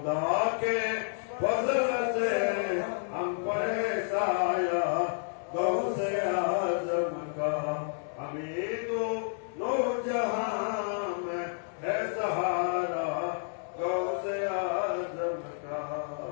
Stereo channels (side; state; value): right; silent; digital silence